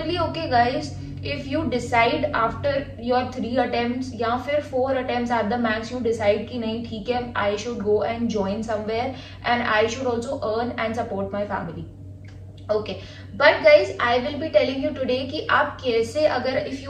okay guys if you decide after your 3 attempts या फिर 4 attempts at the max you decide कि नहीं ठीक है I should go and join somewhere and I should also earn and support my family. Okay, but guys I will be telling you today कि आप कैसे, अगर if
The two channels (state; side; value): identical; both; correlation 1.00